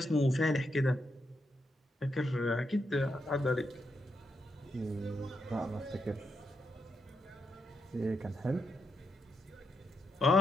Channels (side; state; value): both; normal; correlation 0.83